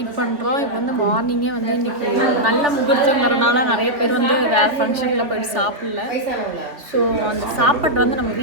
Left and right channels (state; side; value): late; left; 3.2 ms